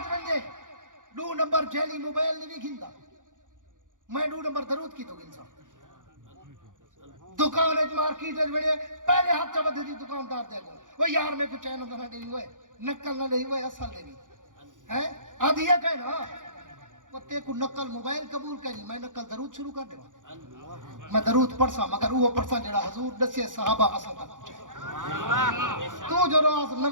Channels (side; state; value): left; late; 0.88 ms